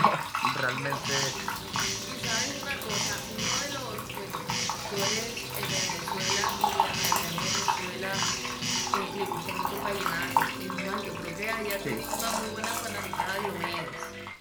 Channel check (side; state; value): both; identical; correlation 1.00